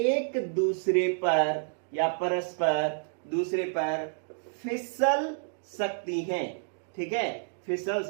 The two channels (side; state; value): left; silent; digital silence